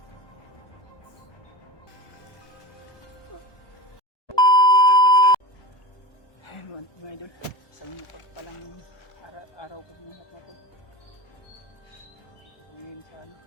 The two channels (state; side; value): late; right; 1.2 ms